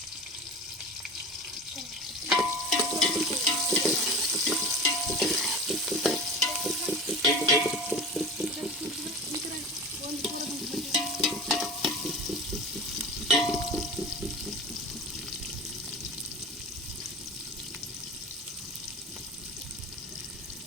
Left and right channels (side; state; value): both; normal; correlation 0.33